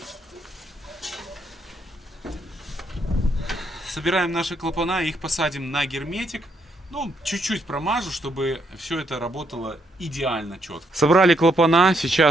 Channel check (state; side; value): normal; both; correlation 0.74